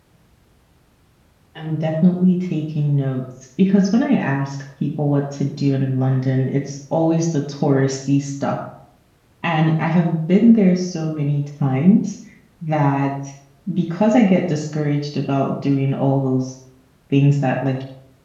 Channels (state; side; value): identical; both; correlation 1.00